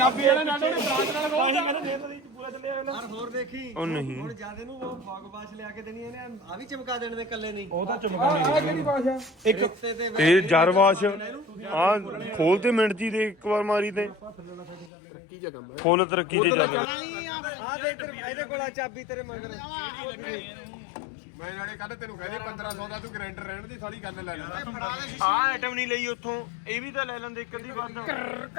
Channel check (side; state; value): right; drops out; at 14.9 s